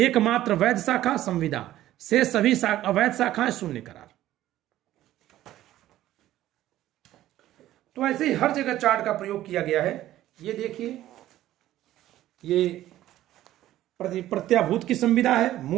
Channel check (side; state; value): left; quieter; 14.0 dB